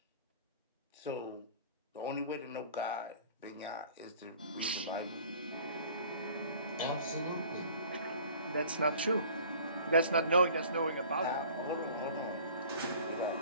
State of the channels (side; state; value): both; inverted; correlation -0.48